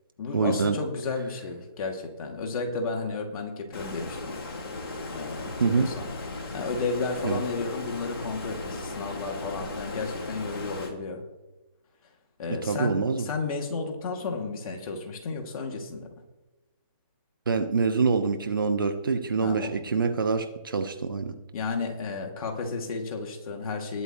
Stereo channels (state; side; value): inverted; both; correlation -0.58